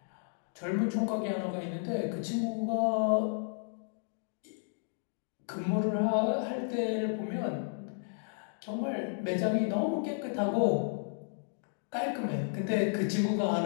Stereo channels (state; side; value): silent; right; digital silence